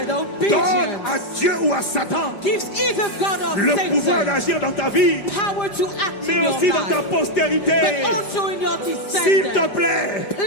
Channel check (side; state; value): right; late; 5.5 ms